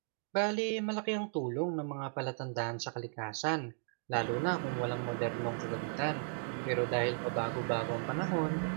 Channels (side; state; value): left; silent; 54 dB below the other